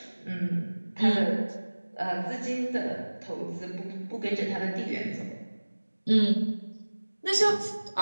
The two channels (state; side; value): inverted; both; correlation -1.00